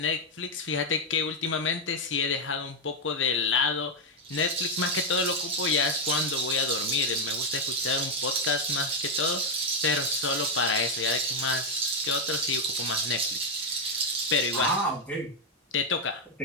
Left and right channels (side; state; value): both; normal; correlation 0.03